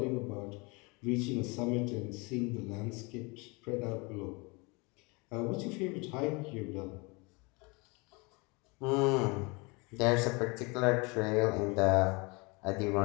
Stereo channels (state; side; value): quieter; right; 28.2 dB